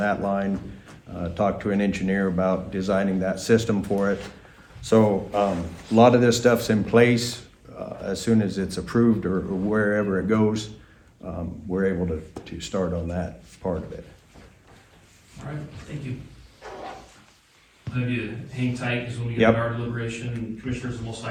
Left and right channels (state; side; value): identical; both; correlation 1.00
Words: line. Talked to an engineer about designing that system for it. So a lot of this stuff's in place. As soon as it's approved or wherever it goes, we're able to start on that part of it. All right, thank you. I'll have you hang tight, because when we get Yep. to our deliberation, commissioners will most